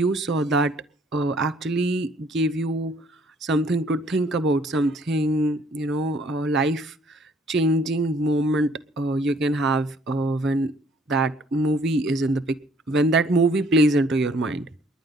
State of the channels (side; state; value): both; normal; correlation 0.61